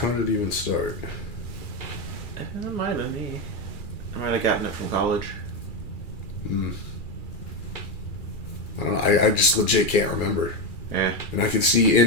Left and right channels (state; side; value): late; right; 2.4 ms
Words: did it even start? It might have been me. I might have gotten it from college. I don't know. I just legit can't remember. Yeah. And I could see